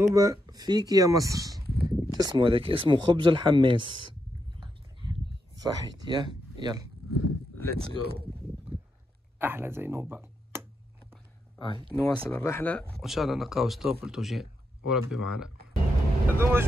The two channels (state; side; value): normal; both; correlation 0.83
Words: فيك يا مصر. اسمه هذاك اسمه خبز الحماس. صحيت يا يلا ليتس جو. احلى زينوبة. نواصل الرحلة وان شاء الله نلقاو ستوب لتوجين وربي معنا. هذوما